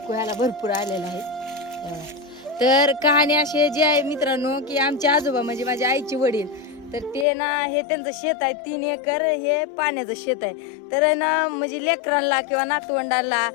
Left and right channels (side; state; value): right; drops out; at 7.2 s